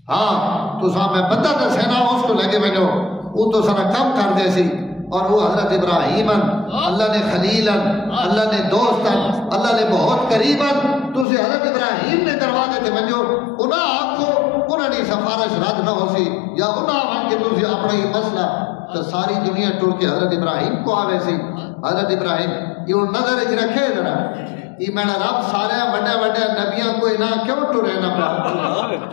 ہاں تو صاحب میں بندہ تے سینا اس کو لگے میں جو وہ تو سارا کم کر دے سی اور وہ حضرت ابراہیم اللہ نے خلیل اللہ نے دوست اللہ نے بہت قریب تو اسے حضرت ابراہیم نے دروازے تے منجو انہاں آنکھو انہاں نے سفارش رد نہ ہو سی یا انہاں آنکھ کے تُسی اپنا ہی مسئلہ تو ساری دنیا ٹور کے حضرت ابراہیم کو آوے سی حضرت ابراہیم یہ وہ نظر اچھ رکھے ذرا یہ میں نے رب سارے بڑے بڑے نبیاں کو نہ کیوں ٹورے نہ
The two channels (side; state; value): right; drops out; at 11.2 s